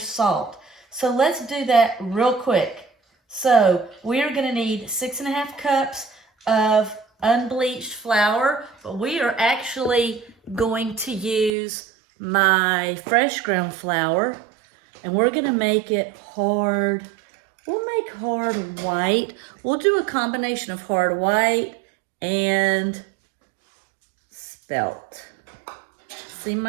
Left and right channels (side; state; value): left; drops out; at 11.5 s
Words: So let's do that real quick. So we are gonna need 6½ cups of unbleached flour, but we are actually going to use my fresh ground flour, and we're gonna make it hard. We'll make hard white. We'll do a combination of hard white and spelt. See